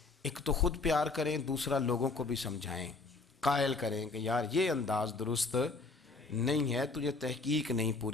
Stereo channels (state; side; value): quieter; right; 3.8 dB